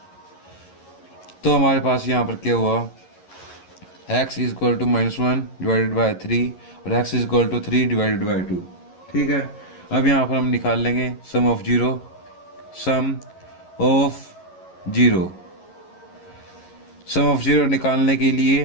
तो हमारे पास यहाँ पर क्या हुआ, x is equal to -1 divided by 3 और x is equal to 3 divided by 2। ठीक है, अब यहाँ पर हम निकाल लेंगे sum of zero. Sum of zero निकालने के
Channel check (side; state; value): right; late; 11 ms